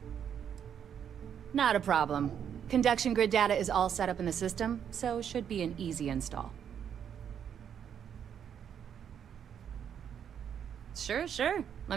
Not a problem. Conduction grid data is all set up in the system, so it should be an easy install. Sure. Let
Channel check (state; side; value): quieter; left; 8.5 dB